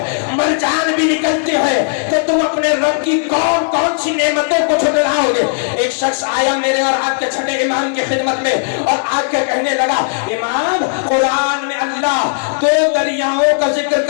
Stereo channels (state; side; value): silent; right; digital silence